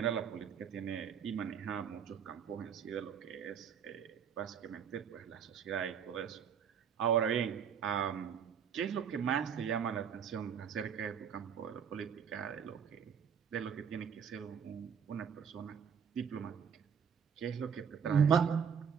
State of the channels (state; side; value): quieter; left; 7.4 dB